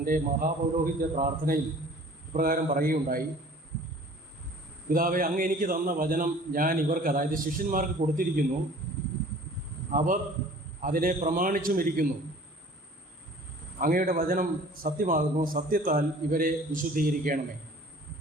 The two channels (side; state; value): both; normal; correlation 0.49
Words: മഹാപൗരോഹിത്യ പ്രാർത്ഥനയിൽ ഇപ്രകാരം പറയുകയുണ്ടായി: പിതാവേ, അങ്ങ് എനിക്ക് തന്ന വചനം ഞാൻ ഇവർക്ക്, അതായത് ശിഷ്യന്മാർക്ക് കൊടുത്തിരിക്കുന്നു. അവർ അതിനെ പ്രമാണിച്ചുമിരിക്കുന്നു. അങ്ങയുടെ വചനം സത്യമാകുന്നു. സത്യത്താൽ ഇവരെ വിശുദ്ധീകരിക്കണമേ.